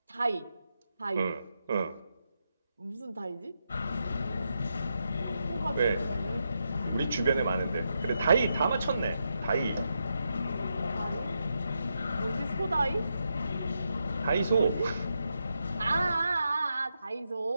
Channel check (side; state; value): both; inverted; correlation -0.84